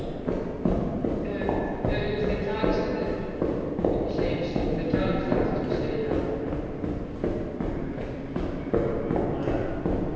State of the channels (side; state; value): both; identical; correlation 1.00